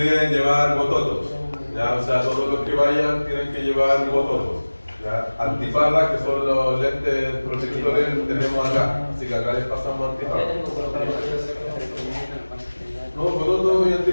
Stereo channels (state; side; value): inverted; both; correlation -1.00